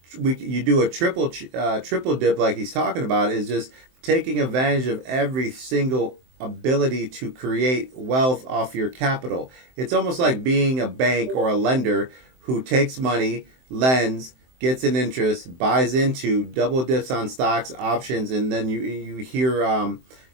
you do a triple dip like he's talking about, is just taking advantage of every single ability to create wealth off your capital. It's almost like being a bank or a lender who takes money, lends, gets an interest, buys into, double dips on stocks, options, and then you hear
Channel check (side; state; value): left; late; 23 ms